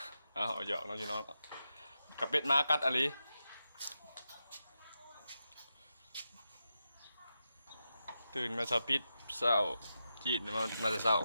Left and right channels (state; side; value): inverted; both; correlation -0.89